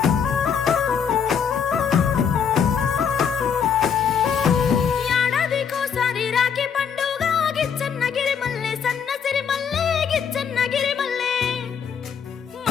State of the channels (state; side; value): quieter; right; 7.1 dB